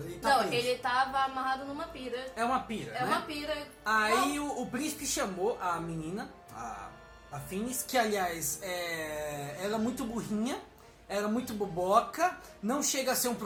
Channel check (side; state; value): both; identical; correlation 1.00